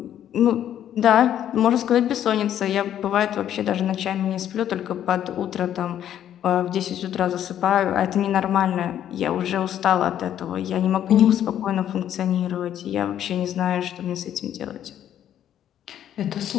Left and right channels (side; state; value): right; quieter; 10.6 dB